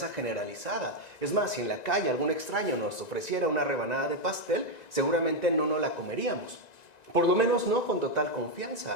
generalizada. Es más, si en la calle algún extraño nos ofreciera una rebanada de pastel, seguramente no nos la comeríamos. Por lo menos no con total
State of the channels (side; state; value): right; late; 1.9 ms